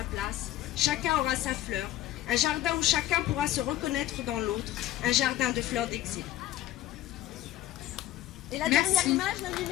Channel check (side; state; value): right; quieter; 14.3 dB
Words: place, chacun aura sa fleur, un jardin où chacun pourra se reconnaître dans l'autre, un jardin de fleurs d'exil. Et la Merci. dernière image, la